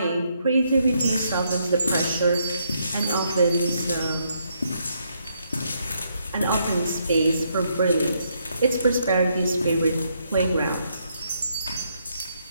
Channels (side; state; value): both; inverted; correlation -0.75